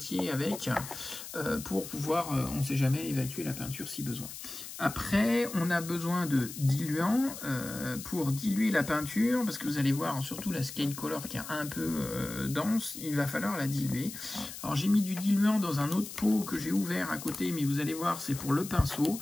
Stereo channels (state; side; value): noise; left; hiss, 11 dB below the sound